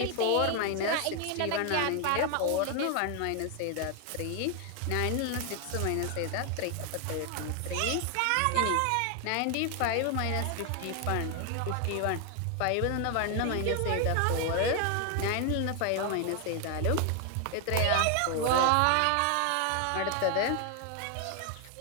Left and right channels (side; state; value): both; different; correlation 0.00